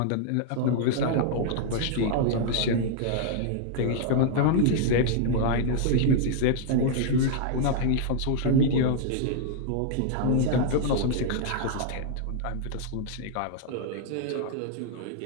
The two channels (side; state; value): both; different; correlation 0.00